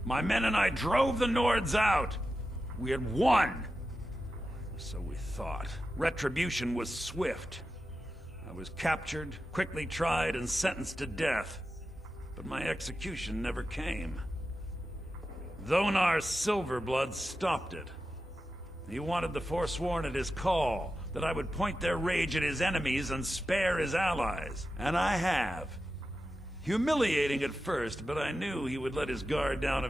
My men and I drove the Nords out. We had won. So we thought. Retribution was swift. I was captured, quickly tried, and sentenced to death. But my execution never came. Dhonar's Silverblood stopped it. He wanted the Forsworn at his call, that I would point their rage at his enemies and spare his allies. And I have. Humiliating at first, but I knew he would let his guard down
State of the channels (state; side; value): normal; both; correlation 0.91